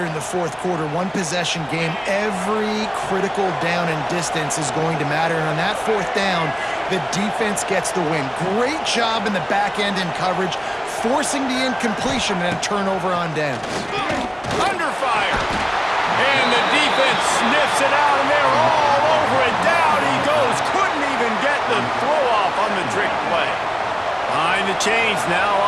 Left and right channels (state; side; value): identical; both; correlation 1.00